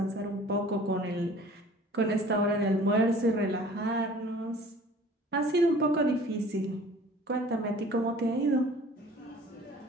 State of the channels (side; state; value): both; normal; correlation 0.49